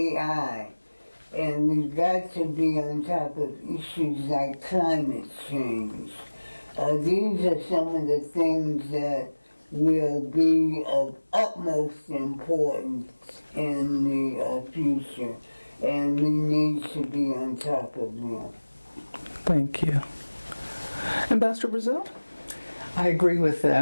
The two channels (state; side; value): inverted; both; correlation -1.00